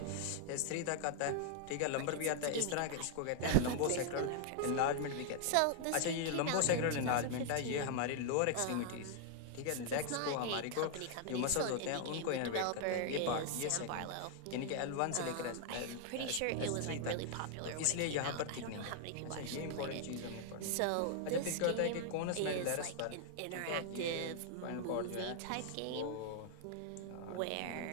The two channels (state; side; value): different; both; correlation 0.00